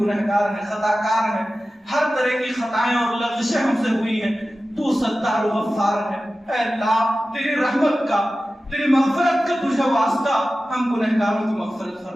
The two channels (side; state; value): both; normal; correlation 0.95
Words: گنہگار ہیں, خطا کار ہیں, ہر طرح کی خطائیں اور لغزشیں ہم سے ہوئی ہیں. تو ستار و غفار ہے. اے اللہ تیری رحمت کا, تیری مغفرت کا تجھے واسطہ, ہم گنہگاروں کی مغفرت